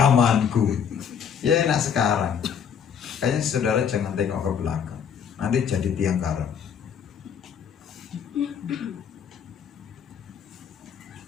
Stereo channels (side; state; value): right; quieter; 7.6 dB